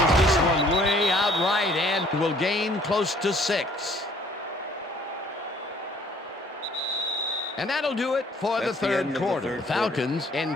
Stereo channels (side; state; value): both; normal; correlation 0.59